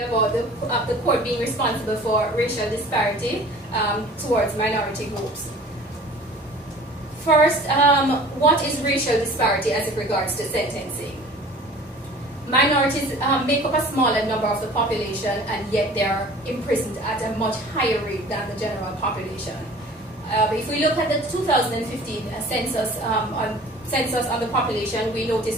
the court being responsible for racial disparity towards minority groups. First, what is racial disparity as it regards to sentencing? Minorities make up a smaller number of the population, and yet they are imprisoned at a much higher rate than the general population. If we look at the 2015 census on the population, we notice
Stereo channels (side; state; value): both; normal; correlation 0.45